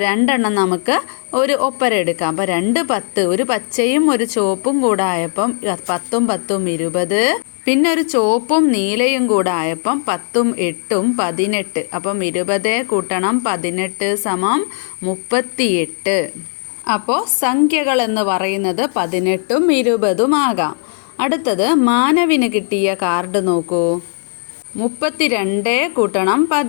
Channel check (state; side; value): silent; right; 64 dB below the other